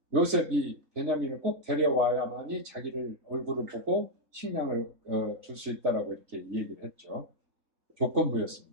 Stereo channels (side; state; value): left; late; 3.4 ms